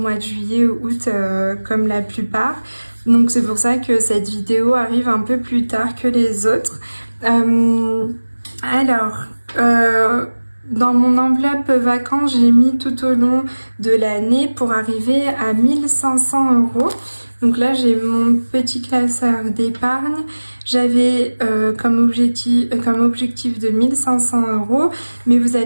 de juillet ou août comme la plupart. Donc c'est pour ça que cette vidéo arrive un peu plus tard que les autres. Dans mon enveloppe vacances, j'ai mis tout au long de l'année pour arriver à 1500 €. Donc là, j'ai mon petit classeur d'épargne. J'avais comme objectif de 1500 €, mais vous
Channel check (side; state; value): both; inverted; correlation -1.00